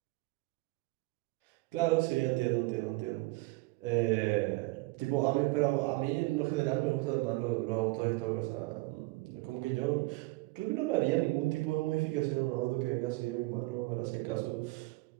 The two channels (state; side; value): quieter; left; 23.0 dB